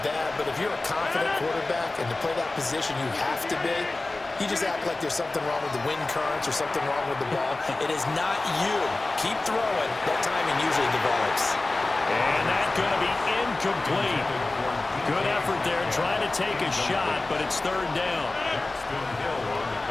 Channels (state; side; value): quieter; right; 3.1 dB